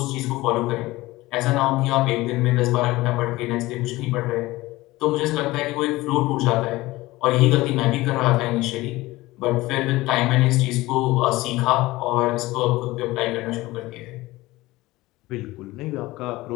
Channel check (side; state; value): right; quieter; 19.2 dB